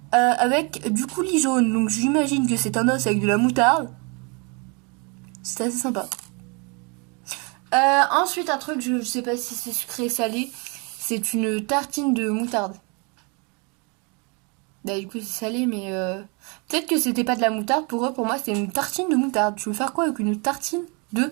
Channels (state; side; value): quieter; left; 32.4 dB